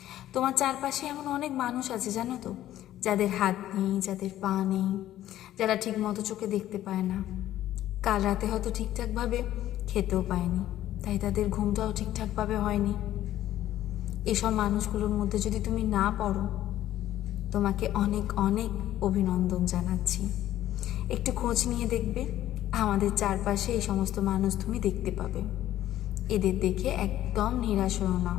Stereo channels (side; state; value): right; quieter; 13.2 dB